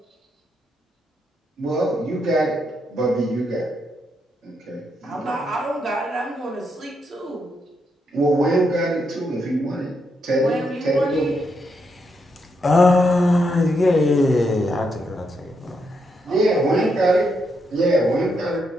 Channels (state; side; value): normal; both; correlation 0.80